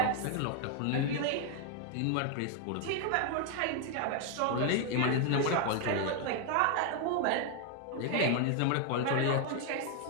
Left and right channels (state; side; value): different; both; correlation 0.00